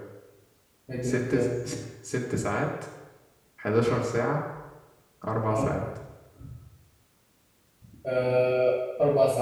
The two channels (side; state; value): both; identical; correlation 1.00